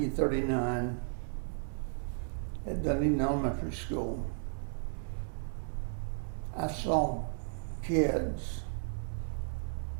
at Dunedin Elementary School, I saw kids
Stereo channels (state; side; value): silent; left; digital silence